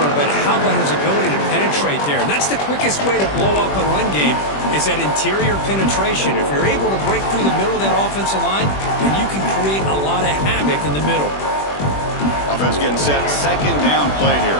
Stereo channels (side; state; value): right; late; 21 ms